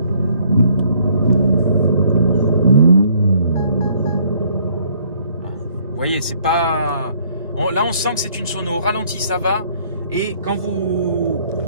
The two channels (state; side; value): inverted; both; correlation -0.63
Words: Vous voyez, c'est pas... Là, on sent que c'est une sono. Au ralenti, ça va. Et quand vous